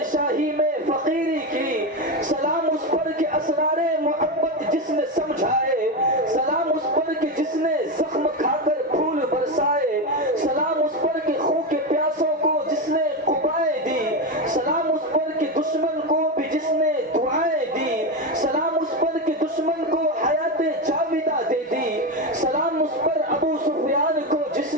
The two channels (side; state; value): both; normal; correlation 0.14